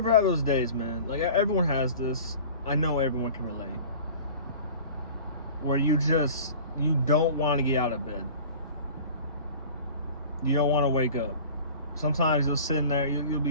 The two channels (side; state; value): both; inverted; correlation -0.42